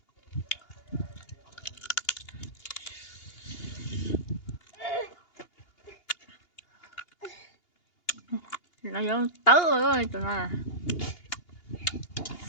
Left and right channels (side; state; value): right; late; 2.8 ms